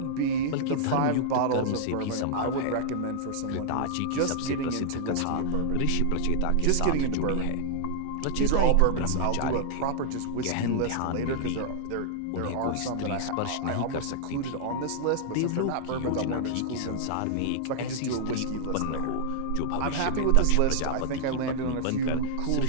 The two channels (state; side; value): different; both; correlation -0.01